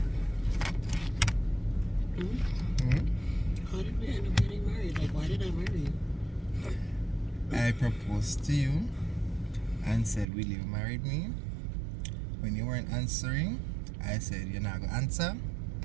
How did we end up getting married? Like, why did I marry you? I proposed to you and said, will you marry me? When you weren't answering, I said, you're not going to answer.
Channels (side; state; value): left; drops out; at 10.2 s